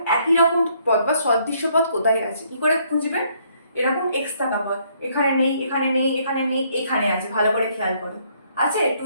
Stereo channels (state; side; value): inverted; both; correlation -0.67